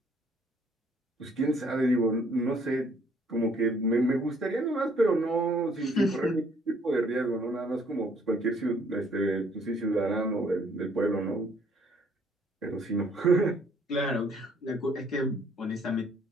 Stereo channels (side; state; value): both; normal; correlation 0.63